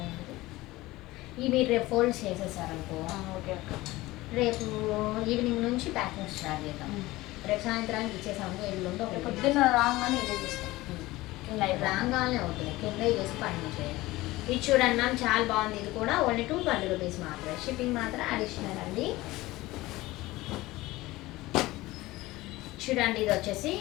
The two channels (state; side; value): quieter; right; 18.9 dB